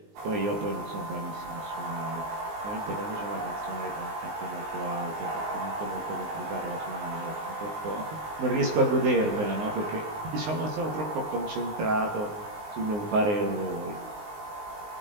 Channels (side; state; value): left; late; 19 ms